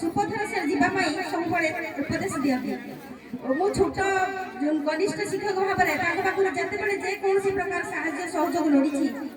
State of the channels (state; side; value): identical; both; correlation 1.00